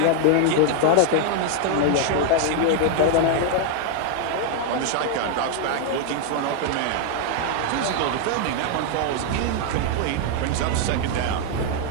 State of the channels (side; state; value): both; different; correlation 0.00